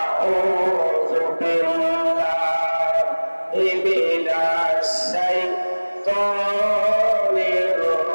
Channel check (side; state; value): both; inverted; correlation -1.00